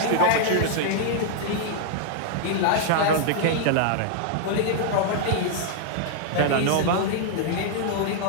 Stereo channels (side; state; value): both; different; correlation -0.01